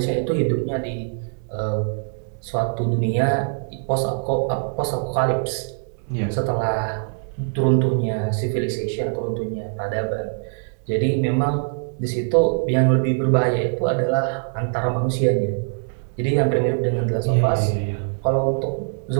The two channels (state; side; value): silent; left; 64 dB below the other